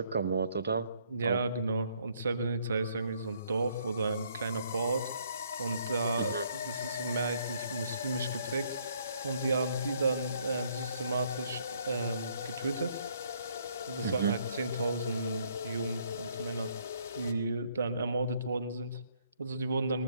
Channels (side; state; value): both; inverted; correlation -0.67